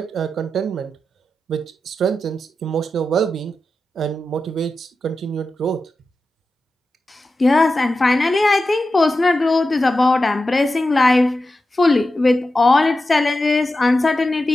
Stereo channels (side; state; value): both; normal; correlation 0.92